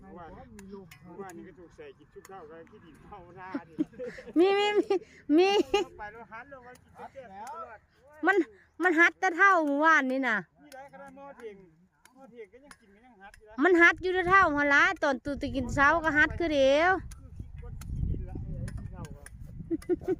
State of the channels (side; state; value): both; identical; correlation 1.00